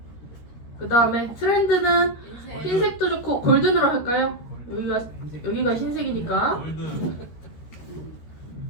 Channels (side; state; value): right; late; 13 ms